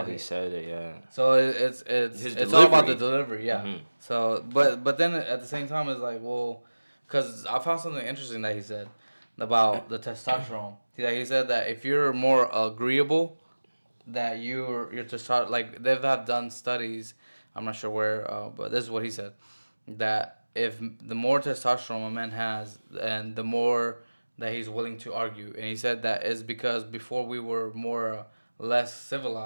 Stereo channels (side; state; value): both; inverted; correlation -1.00